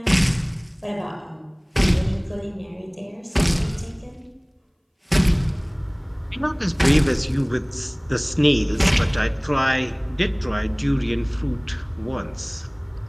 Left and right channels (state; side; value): identical; both; correlation 1.00